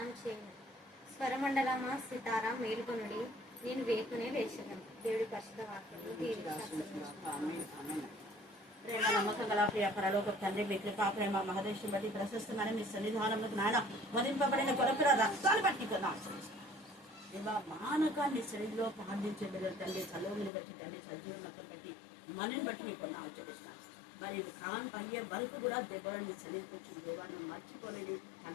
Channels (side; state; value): right; drops out; at 20.5 s